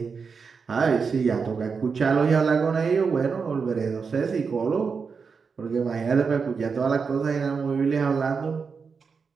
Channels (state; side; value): quieter; left; 5.4 dB